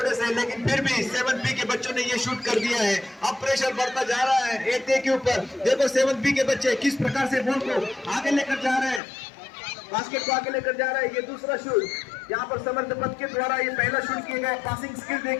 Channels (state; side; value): drops out; right; at 9.0 s